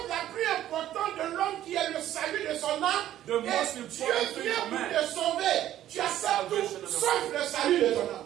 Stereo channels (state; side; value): quieter; left; 12.5 dB